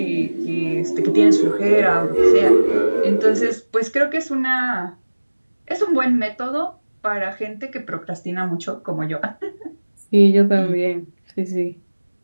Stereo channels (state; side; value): inverted; both; correlation -1.00